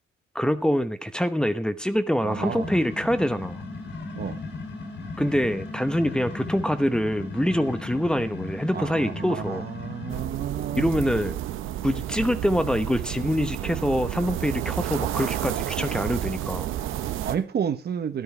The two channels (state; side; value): normal; both; correlation 0.83